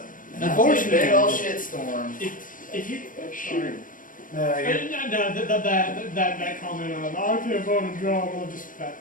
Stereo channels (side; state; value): right; late; 0.39 ms